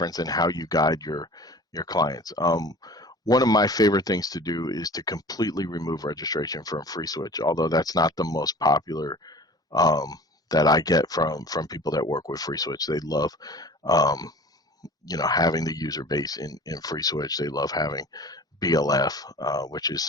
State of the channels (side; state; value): both; normal; correlation 0.42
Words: and how you guide your clients. One of my favorite things to do is to completely remove registration from FreeSWITCH, although that's not the most popular that I get from people that work with FreeSWITCH. They love having the user base in FreeSWITCH. They love having BLF, which is